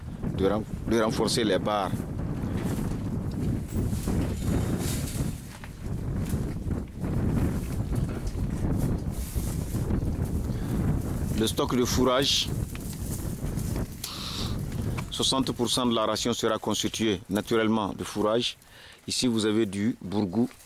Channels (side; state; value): both; identical; correlation 1.00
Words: de renforcer les barres. Le stock de fourrage, 60% de la ration sera constituée naturellement de fourrage. Ici, vous avez du bourgou,